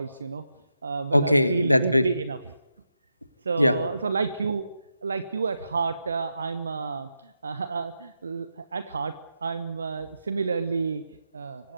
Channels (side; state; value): both; inverted; correlation -0.87